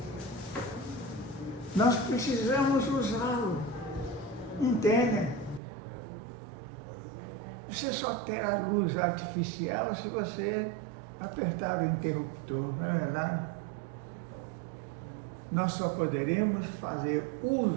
nós precisamos usá-lo. Entendem? Você só terá luz artificial se você apertar o interruptor, não é verdade? Nós só poderemos fazer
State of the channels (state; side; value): drops out; left; at 5.6 s